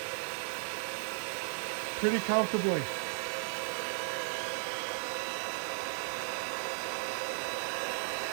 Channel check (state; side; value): silent; left; 54 dB below the other